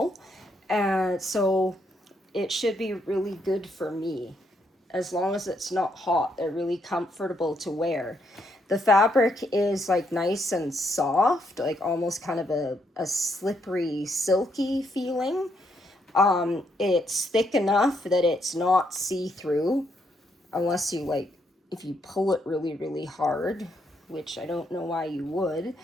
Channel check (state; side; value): normal; both; correlation 0.75